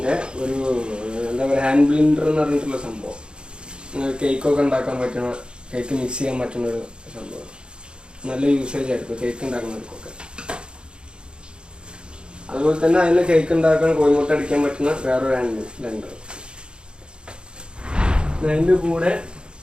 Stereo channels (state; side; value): late; left; 0.052 ms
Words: ഒരു എന്താ പറയുക ഹാൻഡ് ബ്ലെൻഡർ എന്ന് പറഞ്ഞിട്ടുള്ള സംഭവം. കേക്കൊക്കെ ഉണ്ടാക്കാൻ പറ്റുന്ന, കേക്ക് മിക്സ് ചെയ്യാൻ പറ്റുന്ന ഒരു സംഭവം. നല്ല യൂസേജ് ആയിരിക്കും കേക്ക് ഉണ്ടാക്കുന്നവർക്കൊക്കെ. അതുപോലെ തന്നെ അതിൽ കേക്ക് ഉണ്ടാക്കാൻ കോഴിമുട്ട അടിക്കാൻ പറ്റുന്ന വേറൊരു ഹാൻഡ് ബ്ലെൻഡർ. അതിൻ്റെ കൂടെ